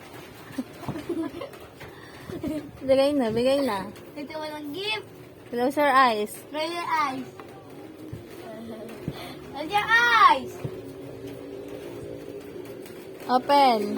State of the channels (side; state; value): both; identical; correlation 1.00